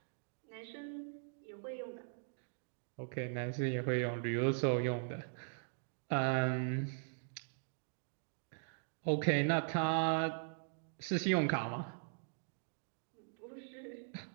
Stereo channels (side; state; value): left; silent; digital silence